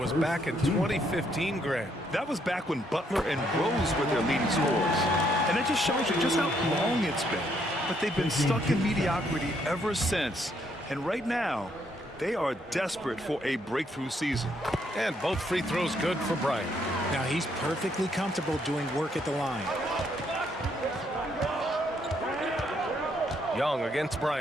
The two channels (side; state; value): both; normal; correlation 0.72